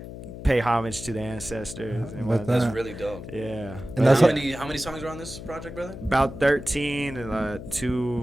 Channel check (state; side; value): noise; left; hum, 11 dB below the sound